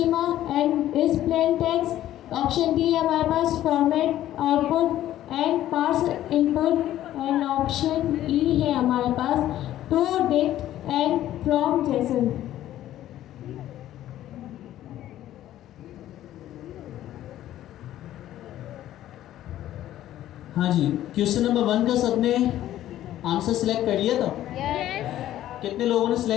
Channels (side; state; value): right; quieter; 13.0 dB